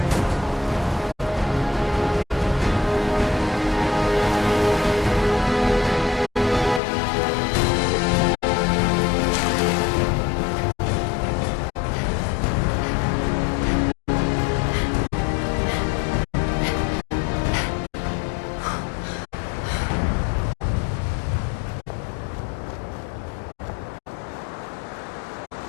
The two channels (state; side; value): drops out; right; at 6.8 s